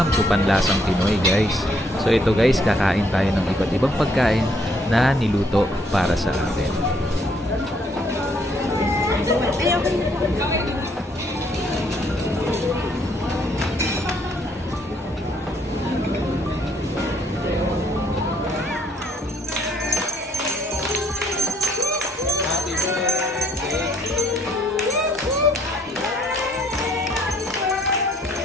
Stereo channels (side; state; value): both; normal; correlation 0.67